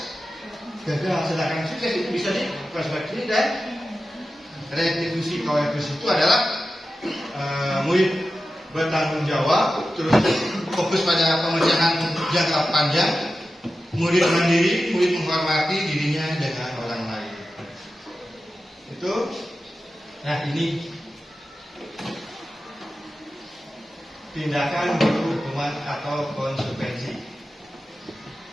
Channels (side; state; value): both; normal; correlation 0.93